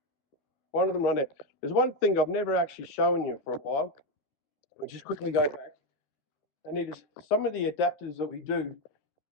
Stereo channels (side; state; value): right; late; 12 ms